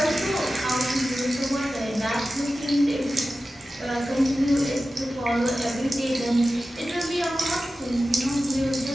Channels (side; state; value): both; normal; correlation 0.94